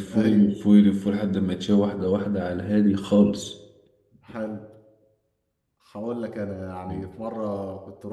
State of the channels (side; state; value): both; identical; correlation 1.00